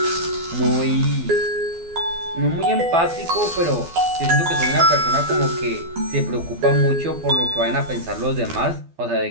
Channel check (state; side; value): late; left; 12 ms